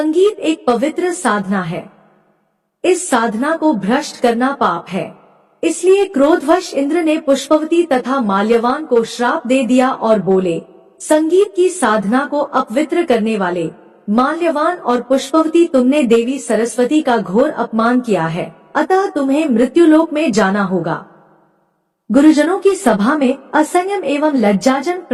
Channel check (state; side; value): identical; both; correlation 1.00